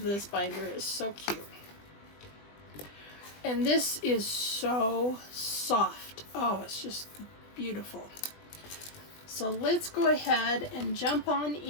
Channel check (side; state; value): right; late; 20 ms